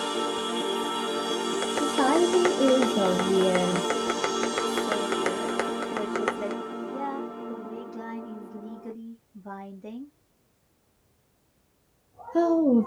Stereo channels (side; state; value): both; identical; correlation 1.00